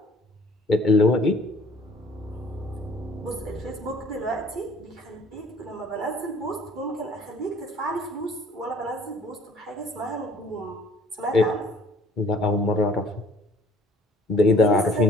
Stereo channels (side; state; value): both; normal; correlation 0.55